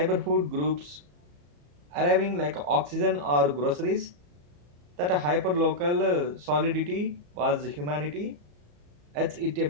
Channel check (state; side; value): late; left; 34 ms